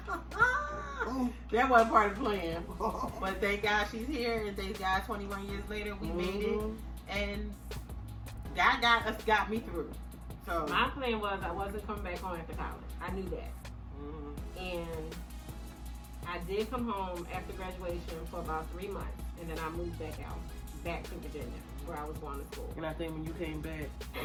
that wasn't part of the plan. But thank God she's here, and thank God 21 years later we made it, Mhm. and God got me through. So my plan was I wasn't coming back home after college. I knew that. mhm. And I did come home after graduation for about 3 months, and then I moved back to Virginia, where I was going to school. And I think when you came back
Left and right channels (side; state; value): both; identical; correlation 1.00